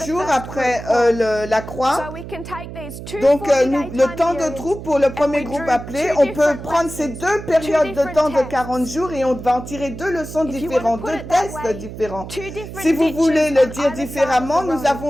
jours après la croix. Donc, le temps de troupe pour le premier groupe appelé, on peut prendre ces deux périodes de temps de 40 jours et on va en tirer deux leçons différentes, deux tests différents. Si vous voulez le dire différemment, nous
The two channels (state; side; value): noise; right; hum, 11 dB below the sound